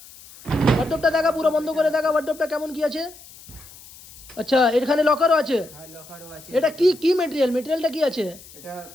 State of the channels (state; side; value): noise; left; hiss, 20 dB below the sound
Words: ওয়ার্ডরোবটা দেখা পুরো বন্ধ করে দেখা ওয়ার্ডরোবটা কেমন কি আছে। আচ্ছা এখানে লকারও আছে। হ্যাঁ লকারও আছে। এটা কি কি মেটেরিয়াল? মেটেরিয়ালটা কি আছে? এটা